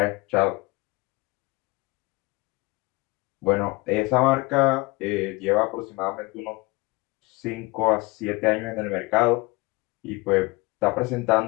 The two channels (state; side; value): quieter; right; 24.3 dB